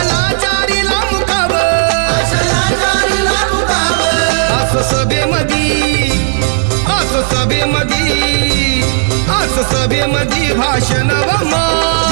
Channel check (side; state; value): left; silent; digital silence